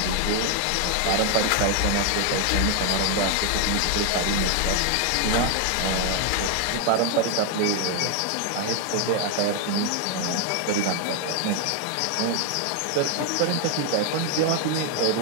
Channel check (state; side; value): different; both; correlation 0.01